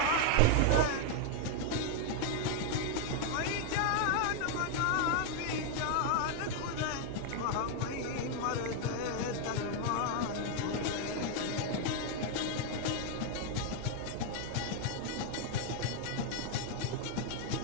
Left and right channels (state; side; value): different; both; correlation 0.01